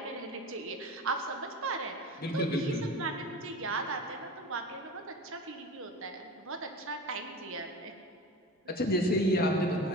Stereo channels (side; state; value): both; normal; correlation 0.32